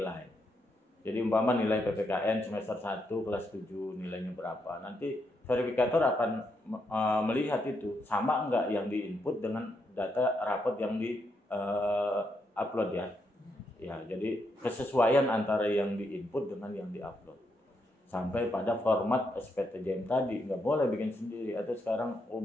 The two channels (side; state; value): both; normal; correlation 0.80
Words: Jadi umpama nilai PPKN semester 1 kelas 7 nilainya berapa. Nanti verifikator akan melihat itu sama enggak yang diinput dengan data rapot yang di upload ya. Ya, jadi kesesuaian antara yang diinput dengan yang diupload. Sampai pada format SPTJM tadi, nggak boleh bikin sendiri. Atau sekarang